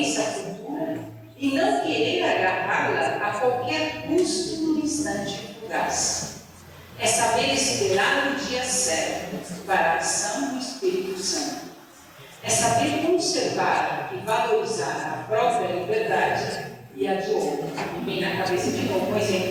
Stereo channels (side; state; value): both; identical; correlation 1.00